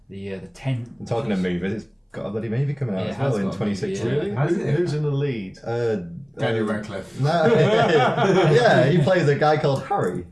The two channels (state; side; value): identical; both; correlation 1.00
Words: tent. Talking of movies, it's got a bloody movie coming out as well in 2016. Really? Who's in the lead? Daniel Radcliffe. No, yeah, he plays a guy called Harry.